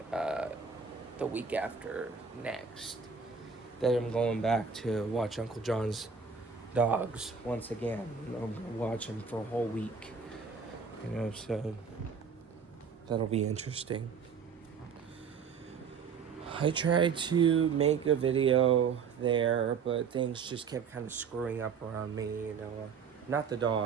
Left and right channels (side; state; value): left; quieter; 5.9 dB